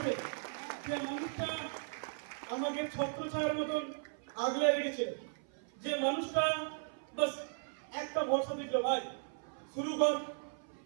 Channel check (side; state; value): left; silent; 53 dB below the other